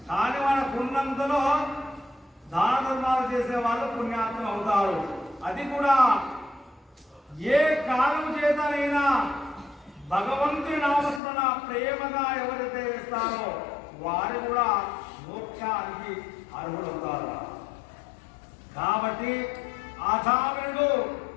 కానీ మనకున్నంతలో దాన ధర్మాలు చేసే వాళ్ళు పుణ్యాత్ములు అవుతారు. అది కూడా ఏ కాలం చేతనైనా భగవంతుని నామస్మరణ ప్రేమగా ఎవరైతే వేస్తారో వారు కూడా మోక్షానికి అర్హులవుతారు. కాబట్టి అజామినుడు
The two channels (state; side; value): drops out; right; at 11.2 s